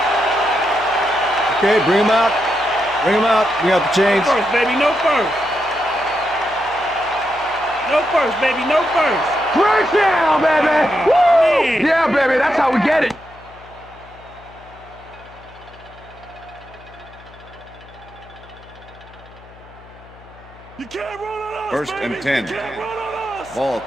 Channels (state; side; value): noise; left; hum, 22 dB below the sound